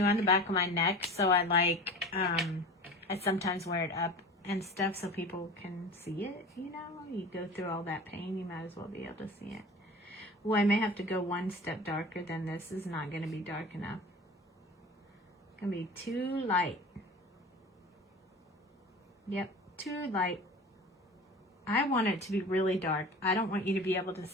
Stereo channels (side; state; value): both; normal; correlation 0.36